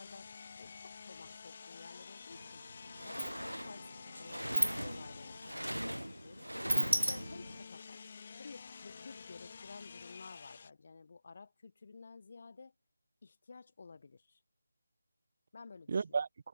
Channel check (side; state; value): both; inverted; correlation -0.97